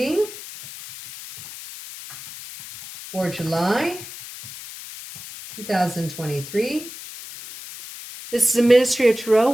for July 2023. This is a Ministry of Tarot.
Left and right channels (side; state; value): left; noise; hiss, 13 dB below the sound